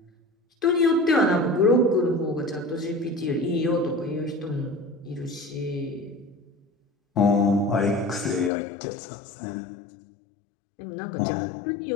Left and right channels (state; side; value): drops out; right; at 8.5 s